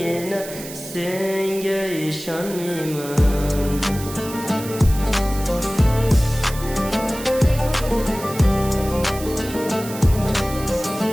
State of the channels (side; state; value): right; noise; hiss, 13 dB below the sound